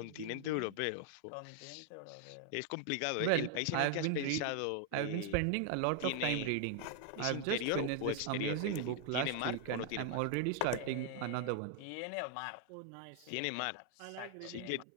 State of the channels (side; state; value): both; different; correlation 0.00